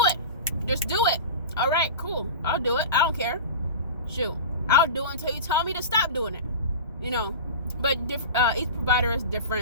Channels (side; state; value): both; inverted; correlation -0.31